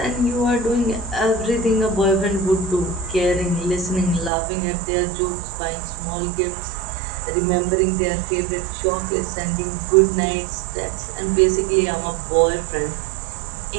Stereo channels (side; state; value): left; drops out; at 4.3 s